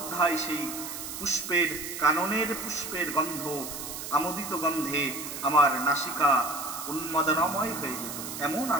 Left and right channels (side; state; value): right; noise; hiss, 8 dB below the sound